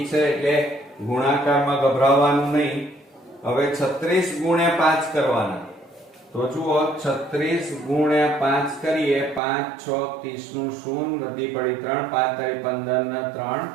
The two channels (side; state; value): left; drops out; at 9.4 s